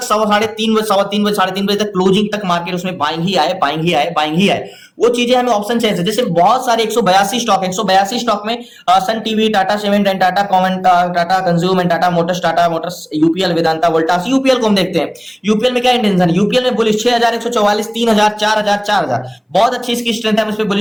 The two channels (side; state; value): both; identical; correlation 1.00